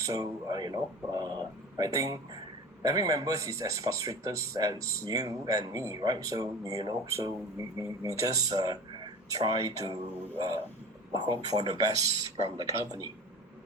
So I think every member is as frustrated as you and me, right? So so we just try to hope for the best from the company.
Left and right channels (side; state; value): both; normal; correlation 0.35